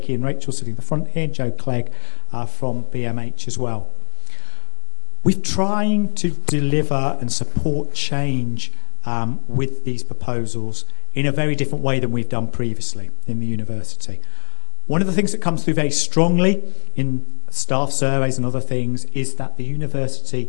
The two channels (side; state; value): right; silent; 65 dB below the other